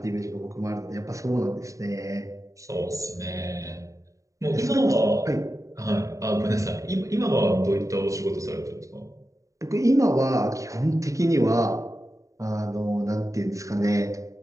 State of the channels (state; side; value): late; left; 0.16 ms